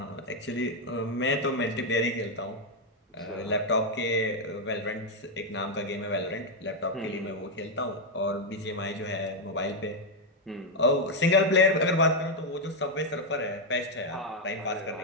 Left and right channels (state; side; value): normal; both; correlation 0.02